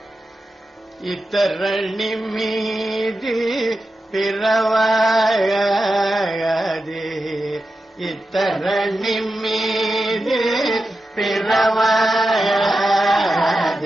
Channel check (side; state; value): both; normal; correlation 0.91